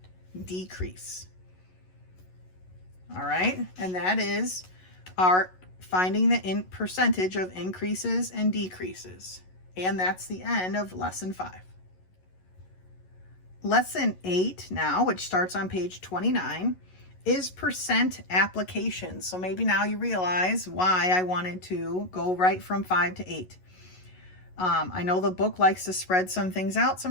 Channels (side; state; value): right; late; 11 ms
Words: decrease. All right, and that is our finding the percentage of increases and decreases. And that's the end of lesson 5. Lesson 8 now, which starts on page 29, is percent applications. So maybe now you realize why I wanted to go right from 5 to 8. I know the book likes to spread some things out